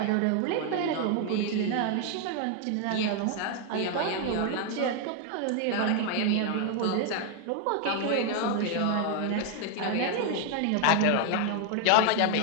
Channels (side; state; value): both; different; correlation 0.00